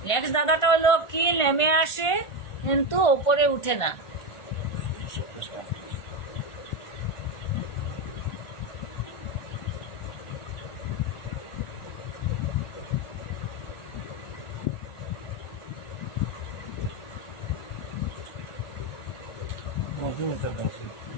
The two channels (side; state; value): right; late; 1.5 ms